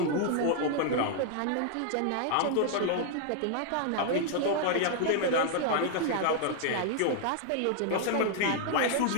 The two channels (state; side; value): different; both; correlation 0.00